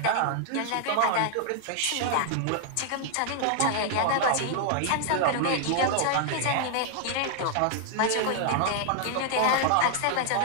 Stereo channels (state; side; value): different; both; correlation -0.01